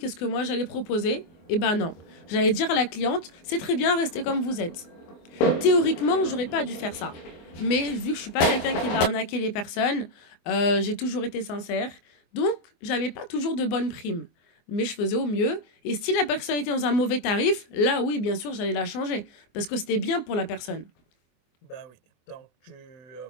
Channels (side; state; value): right; late; 24 ms